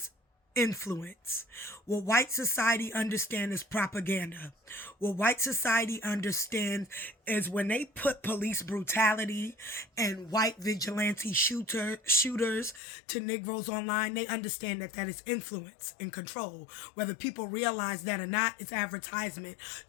influence. What white society understands is propaganda. What white society understands is when they put police brutality and white vigilante shooters to Negroes online, they understand that that is influence and control. Whether people realize that or not, it's advertisement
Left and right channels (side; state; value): right; drops out; at 12.8 s